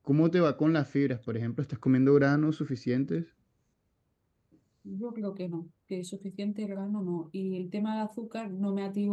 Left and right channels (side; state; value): both; identical; correlation 1.00